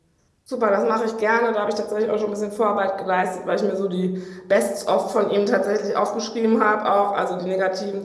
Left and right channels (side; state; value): both; identical; correlation 1.00